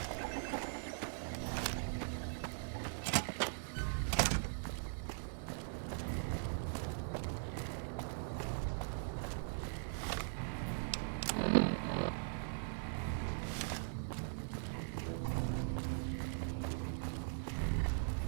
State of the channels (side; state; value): left; silent; 51 dB below the other